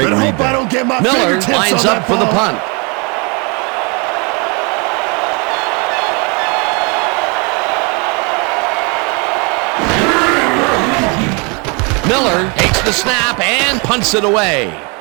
read there. Miller lines up for the punt. Miller takes the snap and punts it away.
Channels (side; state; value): left; quieter; 31.8 dB